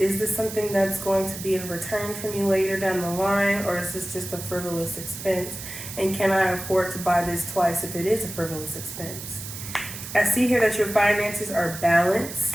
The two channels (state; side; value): noise; right; hiss, 10 dB below the sound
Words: this something that's going to be a return from you later down the line, or is this just a frivolous expense? And can I afford to buy this twice if it is a frivolous expense? I see here that your finances are